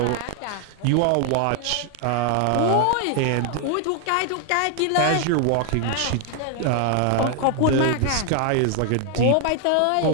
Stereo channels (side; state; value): both; different; correlation 0.00